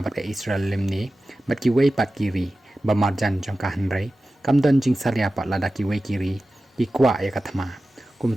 bat ka Israel lemni bat ki wei pat kiri ba marjan jong ka hanrei kam don jing salia pat lada ki wei kiri ki kwa ya ka thama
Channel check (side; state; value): both; normal; correlation 0.95